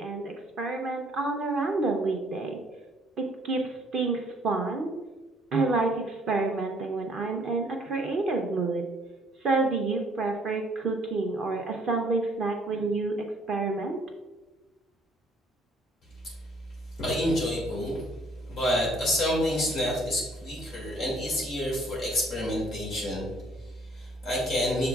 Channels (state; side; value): normal; both; correlation 0.62